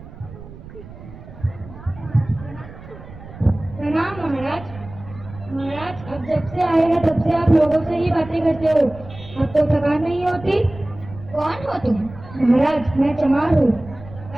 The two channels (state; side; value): noise; right; rumble, 16 dB below the sound